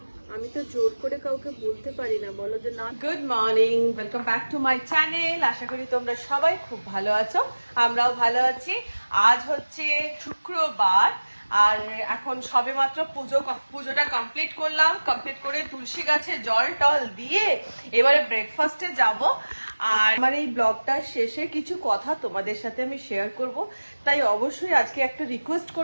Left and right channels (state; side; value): inverted; both; correlation -1.00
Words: আমি তো জোর করে কাউকে বলতে পারি না, বলো যে না। Good morning, welcome back to my channel. আশা করি তোমরা সবাই খুব ভালো আছো, আমরাও ভালো আছি। আজ হচ্ছে শুক্রবার আর এখন সবে মাত্র পুজোটা কমপ্লিট করলাম। কমপ্লিট করে তুলসী গাছে জল টল দিয়ে এবারে ব্রেকফাস্টে যাব। আর আমার এই ব্লগটার শেষে কিছু কথা তোমাদের সাথে আমি শেয়ার করব, তাই অবশ্যই আজকে একটা রিকোয়েস্ট